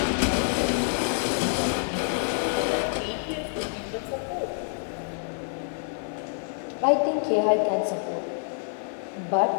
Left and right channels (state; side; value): silent; right; 55 dB below the other